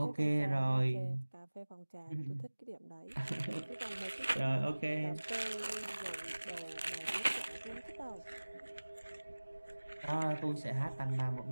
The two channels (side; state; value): both; inverted; correlation -1.00